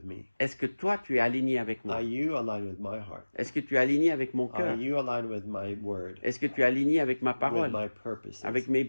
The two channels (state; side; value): inverted; both; correlation -1.00